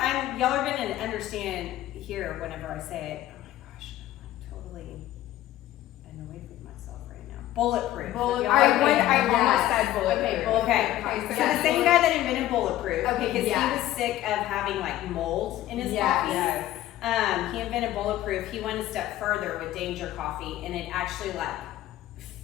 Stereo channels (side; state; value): right; quieter; 14.2 dB